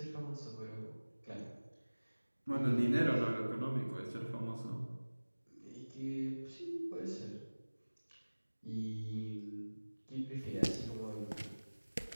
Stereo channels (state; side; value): inverted; both; correlation -1.00